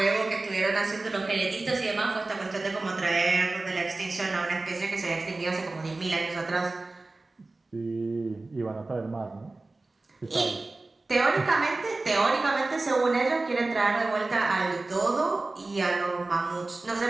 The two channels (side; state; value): left; quieter; 3.3 dB